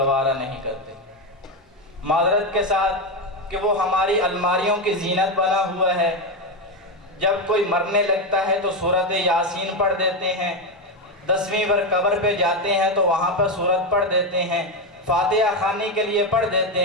نہیں کرتے، معذرت کے ساتھ کہ وہ ہماری الماریوں کی زینت بنا ہوا ہے۔ جب کوئی مرنے لگتا ہے تو سورۃ یاسین پڑھ دیتے ہیں، 10ویں بار قبر پہ جاتے ہیں تو وہاں پر سورت پڑھ دیتے ہیں، فاتحہ خوانی کے لیے پڑھ دیتے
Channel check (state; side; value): normal; both; correlation 0.09